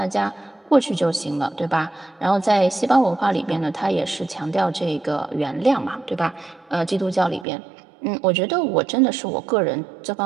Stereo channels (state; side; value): drops out; left; at 7.5 s